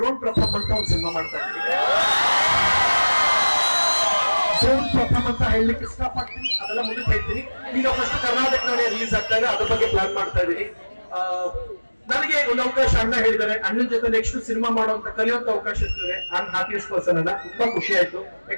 ಪ್ರಥಮ್ ಅಂತ ಒಂದು ಸಿನಿಮಾ ಮಾಡ್ತಾ ಇದ್ದೀನಿ. ಡ್ರೋನ್ ಪ್ರಥಮ್ ಅಂತ ಹೇಳಲಿಕ್ಕೆ ಇಷ್ಟಪಡ್ತೀನಿ, ಅದೆಲ್ಲ ಮುಂದಕ್ಕೆ ಹೇಳ್ತೀನಿ. ಈಗ ಫಸ್ಟ್ ಕರ್ನಾಟಕದಲ್ಲಿ ರಿಲೀಸ್ ಆಗ್ತಾ ಇದೆ, ಅದ್ರ ಬಗ್ಗೆ ಪ್ಲಾನ್ ಮಾಡ್ತಾ ಇದ್ದೀನಿ. ನನಗೆ ಒಂದು ಅವಕಾಶ ಅಣ್ಣ ಹೇಳಿದ್ದಾರೆ, ಅಣ್ಣನ ಜೊತೆ ನೆಕ್ಸ್ಟ್ ಸಿನಿಮಾ ಮಾಡುವಂತ ಕಲಿಯುವಂತ ಅವಕಾಶ ಇರ್ತದೆ. ನಾನು ಹ್ಯಾಪಿಯೆಸ್ಟ್ ಪರ್ಸನ್ ಅನ್ನ, ತುಂಬಾ ಖುಷಿ ಆಯ್ತು.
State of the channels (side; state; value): both; inverted; correlation -1.00